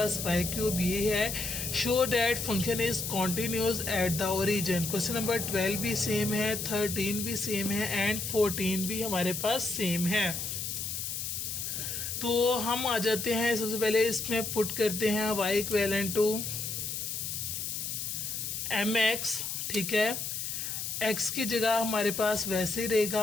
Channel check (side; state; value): left; noise; hiss, 4 dB below the sound